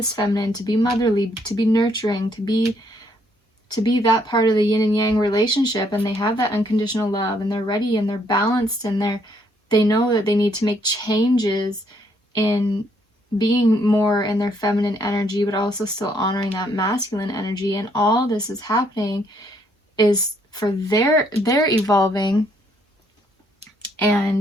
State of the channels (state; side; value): normal; both; correlation 0.70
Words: feminine, to be motherly, to be nurturing, to be that part of the yin and yang relationship. And they have that unconditional love, and they're ready, and they're balanced, and they know that they need to make changes in being more in their feminine energy, but also still honoring that masculine energy. And all this is happening is for their evolving,